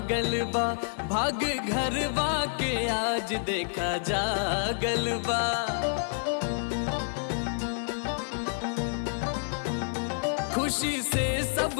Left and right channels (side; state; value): right; silent; 58 dB below the other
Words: बा, भाग घरवा के आज देखा जागल बा। खुशी से